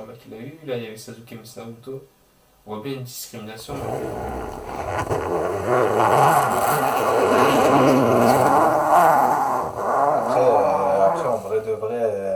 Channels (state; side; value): identical; both; correlation 1.00